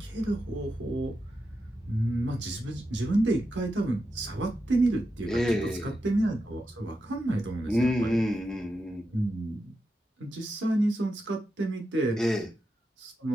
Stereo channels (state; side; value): normal; both; correlation 0.88